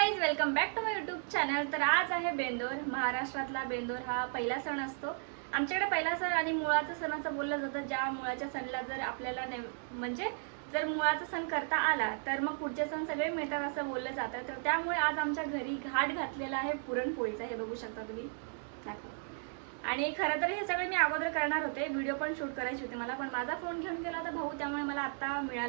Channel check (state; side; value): silent; left; 55 dB below the other